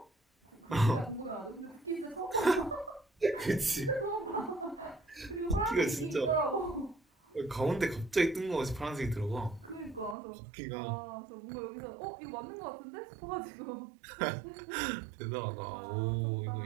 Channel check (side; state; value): left; drops out; at 10.2 s